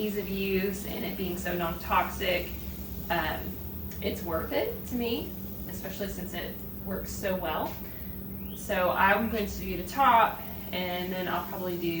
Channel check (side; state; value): both; identical; correlation 1.00